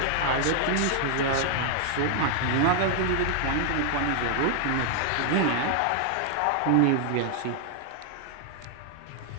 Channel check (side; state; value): both; different; correlation 0.00